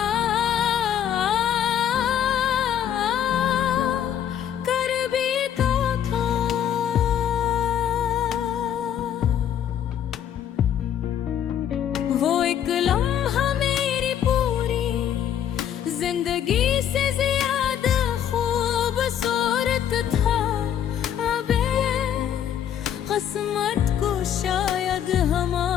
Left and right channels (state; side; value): quieter; right; 9.8 dB